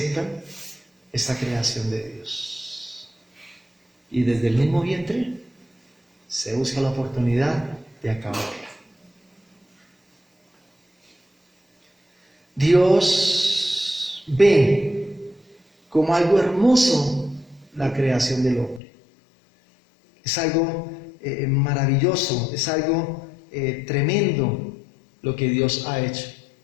esta creación de Dios. Y desde el mismo vientre se busca la oportunidad de acabarla. Dios ve como algo hermoso la creación del hombre. Es algo maravilloso, es algo tremendo lo que Dios ha hecho.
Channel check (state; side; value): drops out; right; at 18.8 s